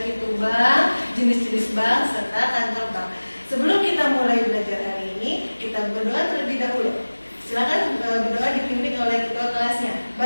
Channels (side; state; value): both; inverted; correlation -1.00